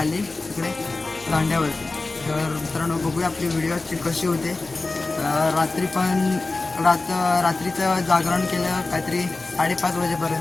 तिकडे दांड्यावरती. तर मित्रांनो, बघूया आपली व्हिडिओची कशी होते. रात्री पण रात्रीचं जागरण केलं काहीतरी 5:30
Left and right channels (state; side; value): quieter; right; 3.4 dB